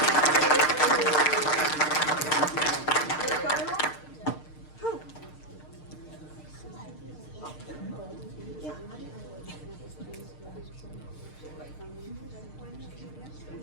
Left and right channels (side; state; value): right; late; 6.6 ms